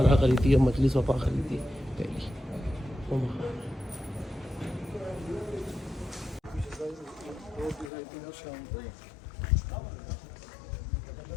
करी थी और मजलिस वपा करी थी पहली।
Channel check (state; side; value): drops out; right; at 7.9 s